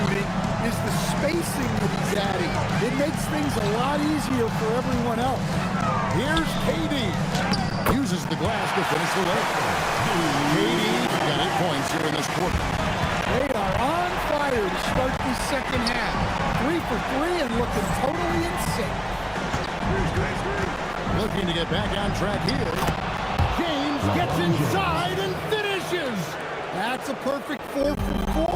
is the spacing that he's adding. It makes things a lot easier for everyone else. Here's KD. Uses the glass to finish the leg. KD got 8 points here in this quarter. They are on fire to start the second half. 3 for 3 and looking totally in sync. Looking to get back on track here. James gets inside and finishes. That's a perfect 4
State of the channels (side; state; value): both; identical; correlation 1.00